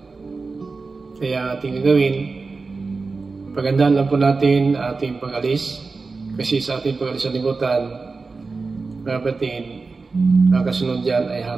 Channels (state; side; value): quieter; left; 4.1 dB